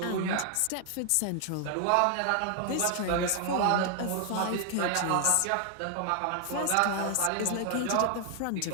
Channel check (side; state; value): both; different; correlation 0.00